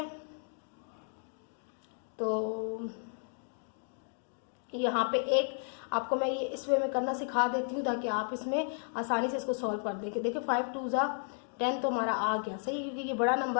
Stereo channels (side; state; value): right; silent; 55 dB below the other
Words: तो यहाँ पे एक आपको मैं ये इस वे में करना सिखा देती हूँ ताकि आप इसमें आसानी से इसको सॉल्व कर दें। देखिए 5 2 ज़ा 10 तो हमारा आ गया सही, क्योंकि ये बड़ा